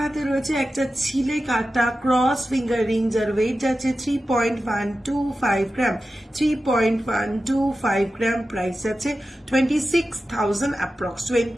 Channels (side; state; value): both; normal; correlation 0.93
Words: হাতে রয়েছে একটা ছিলে কাটা ক্রস ফিঙ্গার রিং, যার ওয়েট যাচ্ছে 3.125 গ্রাম। 3.125 গ্রাম, প্রাইস যাচ্ছে 26,000 অ্যাপ্রক্স,